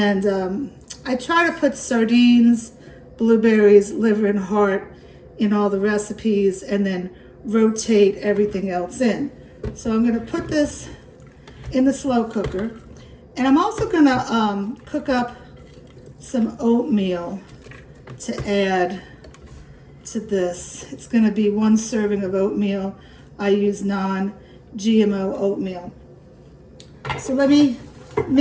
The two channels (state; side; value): identical; both; correlation 1.00